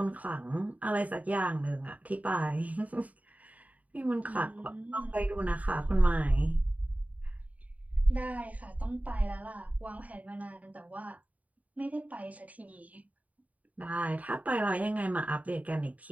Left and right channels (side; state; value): left; late; 0.071 ms